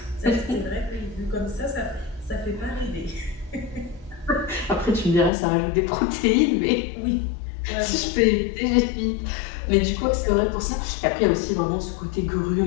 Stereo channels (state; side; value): drops out; right; at 5.3 s